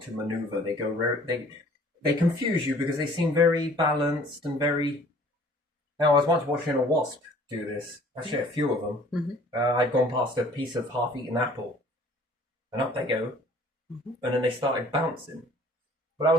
to maneuver. They confuse you because they seem very balanced and very... Now, I was once watching a wasp do this. Actually, a few of them. I'd gone past a piece of half-eaten apple. And up they go. And then they started bouncing. But I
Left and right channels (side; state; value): both; normal; correlation 0.53